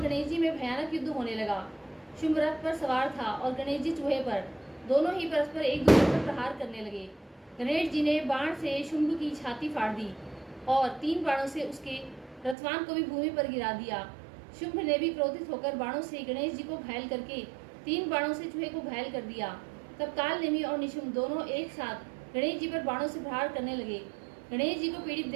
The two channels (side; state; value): left; drops out; at 12.6 s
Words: गणेश जी में भयानक युद्ध होने लगा। शुंभ रथ पर सवार था और गणेश जी चूहे पर। दोनों ही परस्पर एक दूसरे पर प्रहार करने लगे। गणेश जी ने बाण से शुंभ की छाती फाड़ दी और 3 बाणों से उसके रथवान को भी भूमि पर गिरा दिया। शुंभ ने भी क्रोधित होकर बाणों से गणेश जी को घायल करके 3 बाणों से चूहे को घायल कर दिया। तब काल नेमी और निशुंभ दोनों एक साथ गणेश जी पर बाणों से प्रहार करने लगे। गणेश जी को पीड़ित